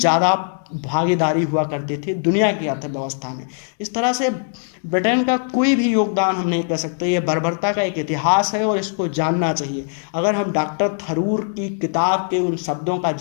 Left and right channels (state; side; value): silent; right; digital silence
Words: भागीदारी हुआ करती थी दुनिया की अर्थव्यवस्था में। इस तरह से ब्रिटेन का कोई भी योगदान हम नहीं कर सकते। ये बर्बरता का एक इतिहास है और इसको जानना चाहिए। अगर हम डॉक्टर थरूर की किताब के उन शब्दों का